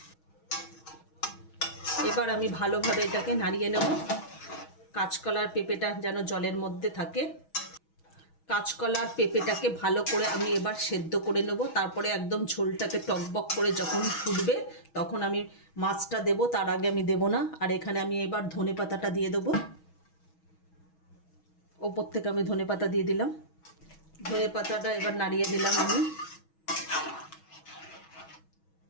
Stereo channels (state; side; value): late; right; 6.3 ms